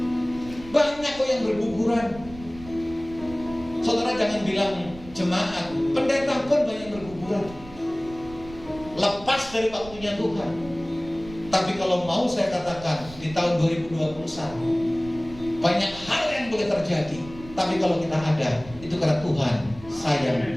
Banyak kok yang berguguran. Saudara jangan bilang jemaat, pendeta pun banyak berguguran. Lepas dari waktunya Tuhan. Tapi kalau mau saya katakan di tahun 2021 banyak hal yang boleh terjadi. Tapi kalau kita ada, itu karena Tuhan sayang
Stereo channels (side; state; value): right; noise; rumble, 17 dB below the sound